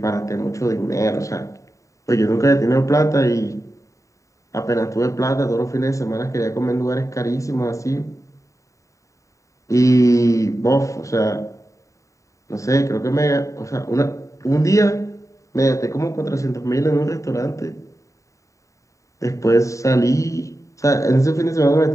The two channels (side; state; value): right; late; 0.16 ms